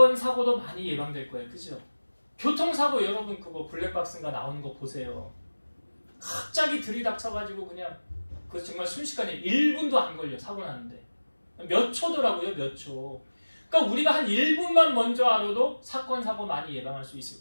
사고도 많이 예방될 거예요. 그죠? 교통사고 여러분 그거 블랙박스인가 나오는 거 보세요. 갑자기 들이닥쳐가지고 그냥 그 정말 순식간에 1분도 안 걸려 사고 나는데 몇 초더라고요. 몇 초. 그러니까 우리가 한 1분만 먼저 알아도 사건, 사고 많이 예방할 수 있을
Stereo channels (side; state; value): both; inverted; correlation -1.00